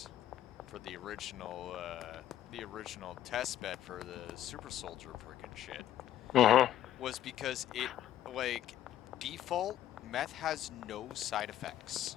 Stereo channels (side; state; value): right; quieter; 12.1 dB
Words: for the original test bed for the Super Soldier freaking shit was because it, like, default meth has no side effects.